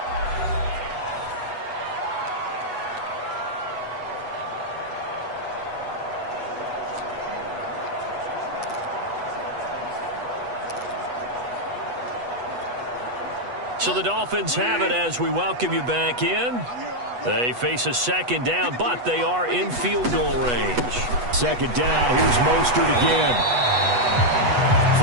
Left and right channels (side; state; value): left; late; 8.2 ms